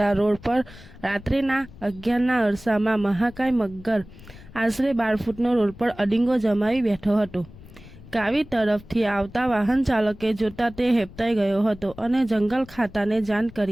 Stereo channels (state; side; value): noise; left; rumble, 20 dB below the sound